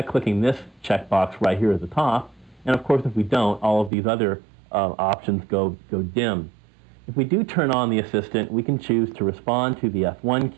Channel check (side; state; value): left; drops out; at 3.9 s